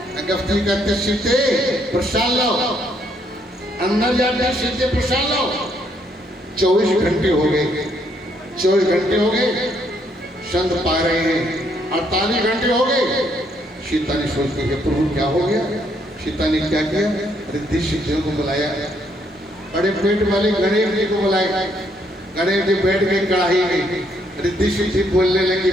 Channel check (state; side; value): normal; both; correlation 0.71